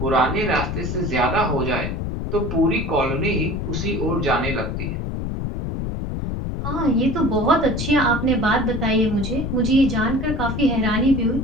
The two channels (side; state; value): left; noise; rumble, 4 dB below the sound